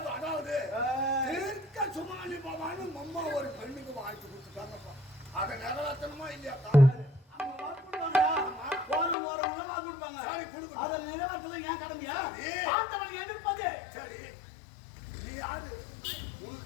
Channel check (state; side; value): drops out; right; at 9.2 s